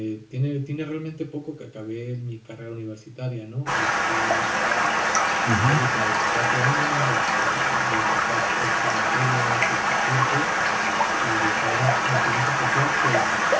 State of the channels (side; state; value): both; identical; correlation 1.00